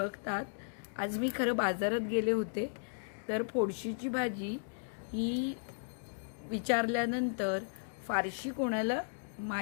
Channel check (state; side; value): silent; right; digital silence